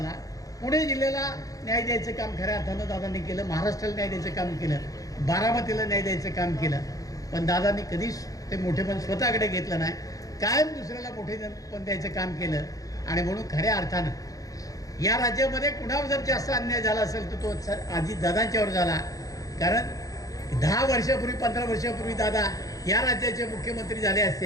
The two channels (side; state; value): right; late; 0.17 ms